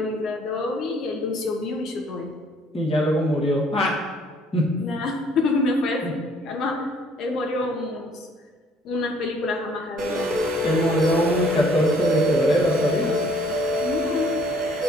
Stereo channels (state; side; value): normal; both; correlation 0.60